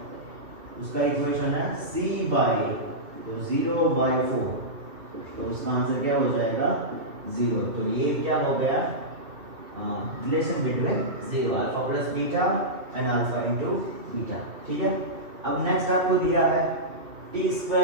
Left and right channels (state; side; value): late; left; 2.4 ms